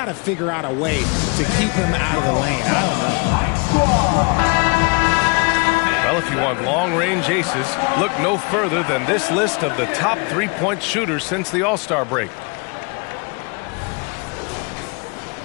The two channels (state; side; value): quieter; right; 31.5 dB